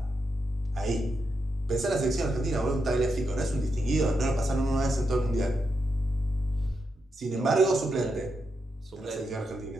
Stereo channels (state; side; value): normal; both; correlation 0.84